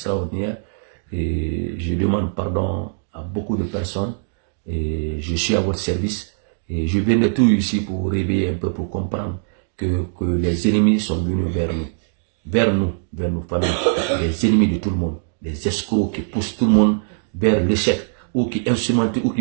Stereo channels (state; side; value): silent; left; digital silence